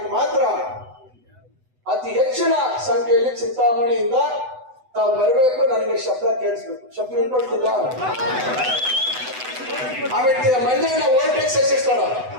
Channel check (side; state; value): left; late; 8.0 ms